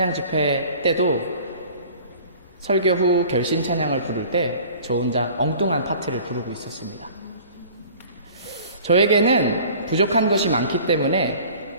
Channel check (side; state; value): both; inverted; correlation -0.46